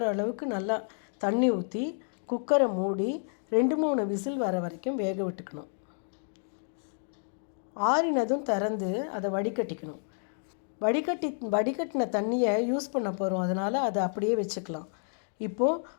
அளவுக்கு நல்லா தண்ணி ஊற்றி குக்கரை மூடி 2-3 விசில் வர வரைக்கும் வேக விட்டுக்கணும். ஆறினதும் திறந்து அதை வடிகட்டிக்கணும். வடிகட்டின தண்ணியை யூஸ் பண்ண போகிறோம், அதனால் அதை அப்படியே வச்சுக்கலாம். இப்போது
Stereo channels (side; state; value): right; silent; digital silence